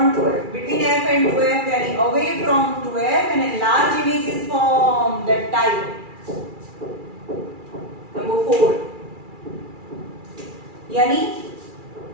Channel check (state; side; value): late; left; 2.4 ms